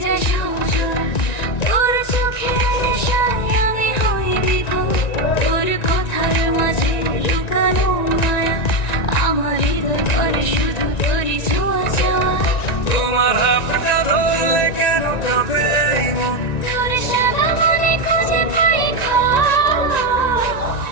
যায় সময়, তোর চোখের নেশায় আমি হই বিভোর, তোর কথার মাঝে লুকানো মায়া, আমার হৃদয় করে শুধু তোরই ছোঁয়া চাওয়া। তোমার হাতটা ধরলে কেন কাঁপে এই মন, তোর সাদা মনে খুঁজে পাই ঘর,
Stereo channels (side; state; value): right; late; 1.9 ms